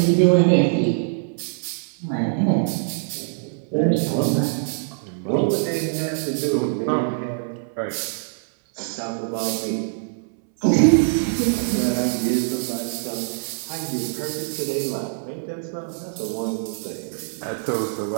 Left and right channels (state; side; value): silent; left; 63 dB below the other